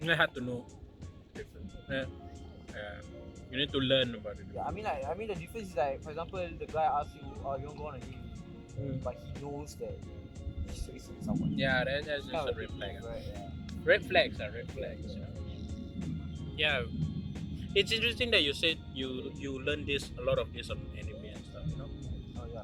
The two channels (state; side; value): identical; both; correlation 1.00